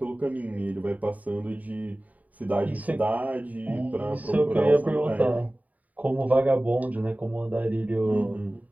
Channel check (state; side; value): late; left; 0.073 ms